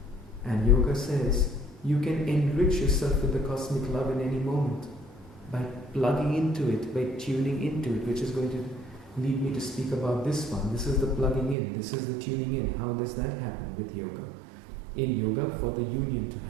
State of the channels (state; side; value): drops out; left; at 11.6 s